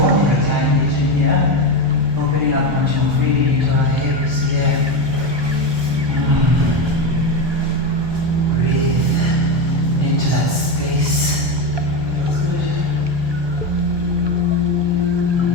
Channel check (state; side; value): late; left; 1.2 ms